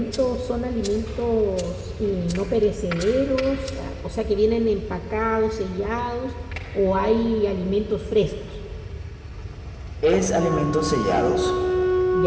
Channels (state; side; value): identical; both; correlation 1.00